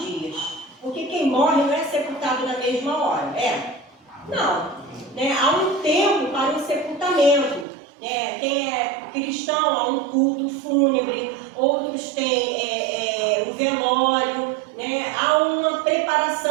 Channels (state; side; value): drops out; left; at 7.7 s